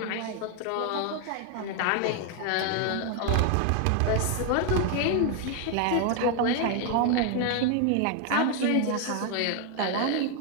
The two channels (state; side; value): different; both; correlation 0.01